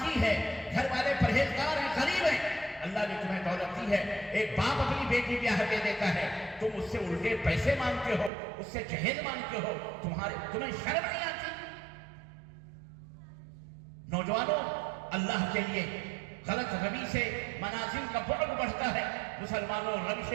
ہے، گھر والے پرہیزگار ہیں، غریب ہیں. اللہ نے تمہیں دولت دی ہے. ایک باپ اپنی بیٹی بیاہ دے دیتا ہے، تم اس سے الٹے پیسے مانگتے ہو، اس سے جہیز مانگتے ہو. تمہیں شرم نہیں آتی؟ نوجوانوں، اللہ کے لیے غلط روی سے منازل کا بعد بڑھتا ہے. مسلمانوں، روش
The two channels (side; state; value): left; drops out; at 8.3 s